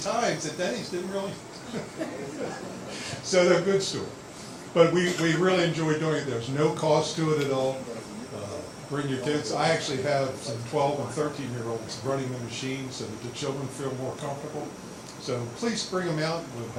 that Denny's didn't really. So they're good stories. But we really enjoy doing it. There's no cost to it at all. Bring your kids. I actually have some 12 and 13-year-olds running the machine so that the children feel more comfortable. So please bring them out. We'll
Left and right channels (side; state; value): both; identical; correlation 1.00